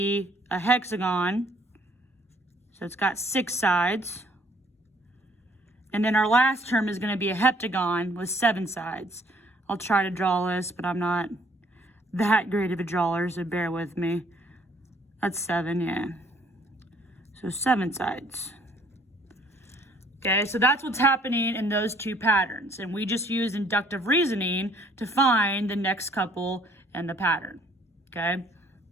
a hexagon. So it's got 6 sides. And then our last term is going to be a heptagon with 7 sides. I'll try to draw this, but I'm not that great of a drawer, so bear with me. That's 7, yeah. So 7 sides. Okay, so that's what's happening in those two patterns. And we just use inductive reasoning to find the next couple in the pattern. Okay.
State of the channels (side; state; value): both; normal; correlation 0.61